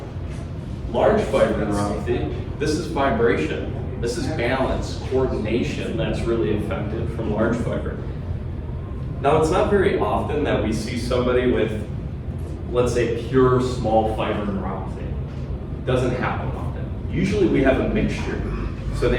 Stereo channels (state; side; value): identical; both; correlation 1.00